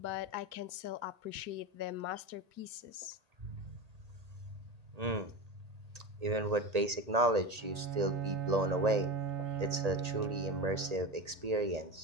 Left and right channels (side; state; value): left; late; 1.8 ms